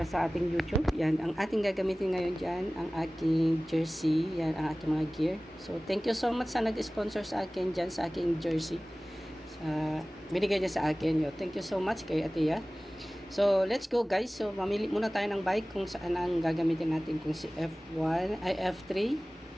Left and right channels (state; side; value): normal; both; correlation 0.98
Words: sa ating YouTube. Yan. Ang ating gagamitin ngayon dyan, ang aking jersey. Yan, ang aking mga gear. So, thank you so much sa nag-sponsor sa akin dyan, sa aking jersey. Binigay niya sa akin. Yo. Thank you so much kay Atia. So, let's go guys. So, mamili muna tayo ng bike kung saan ang gagamitin natin. Kung si F1, ay F3.